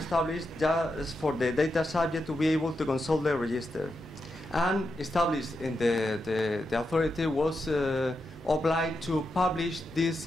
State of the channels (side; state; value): both; normal; correlation 0.86